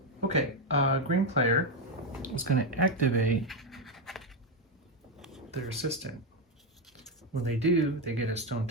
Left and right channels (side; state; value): both; normal; correlation 0.07